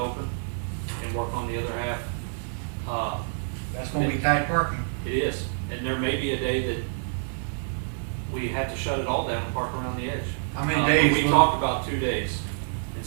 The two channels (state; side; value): silent; left; digital silence